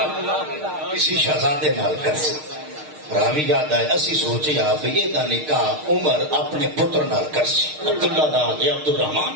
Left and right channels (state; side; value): late; left; 6.5 ms